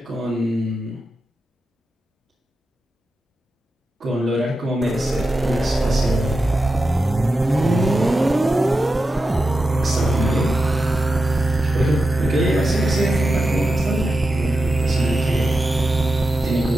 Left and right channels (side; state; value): both; normal; correlation 0.90